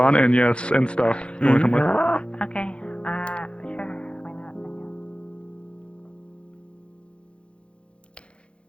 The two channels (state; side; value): late; right; 0.058 ms